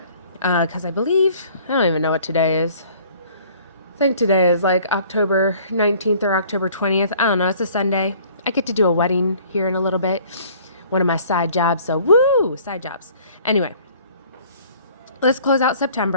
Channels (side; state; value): both; inverted; correlation -0.54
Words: because I believe, I don't even know what today is. I think today is like October 19th or October 20th. I don't know. It's a Sunday. I get to do a wedding here in a little bit. One of my side jobs. So woo, side jobs. Anyway, let's close out